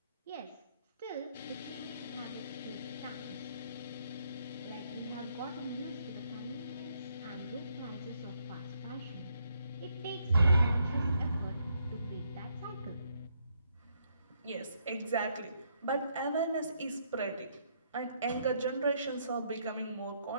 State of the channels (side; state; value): both; inverted; correlation -0.73